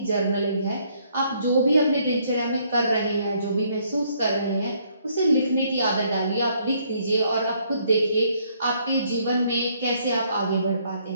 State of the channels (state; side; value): inverted; both; correlation -0.68